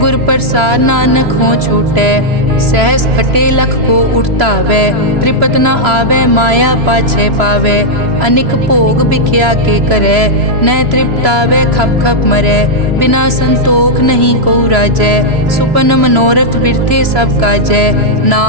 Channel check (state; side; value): late; left; 3.0 ms